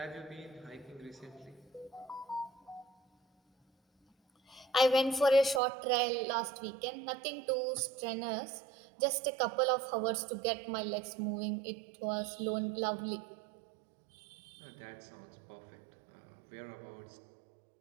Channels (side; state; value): left; drops out; at 5.6 s